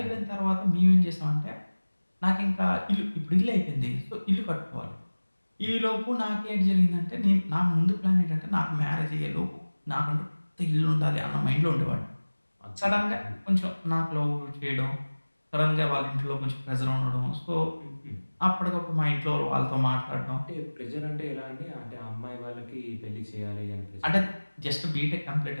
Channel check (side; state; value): both; inverted; correlation -1.00